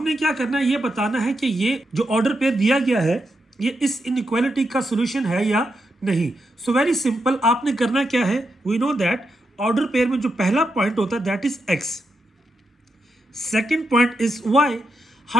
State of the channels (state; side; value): normal; both; correlation 0.84